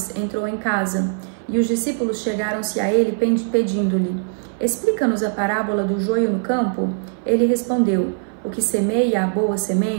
entrou em casa, e os discípulos chegaram-se a ele pedindo-lhe: Explica-nos a parábola do joio no campo. Ele respondeu: O que semeia a boa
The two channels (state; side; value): silent; left; 60 dB below the other